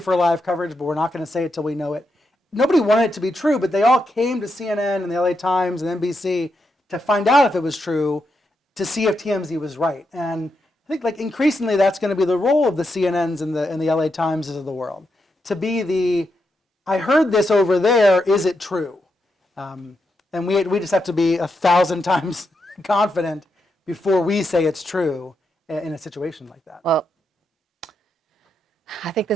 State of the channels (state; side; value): normal; both; correlation 0.83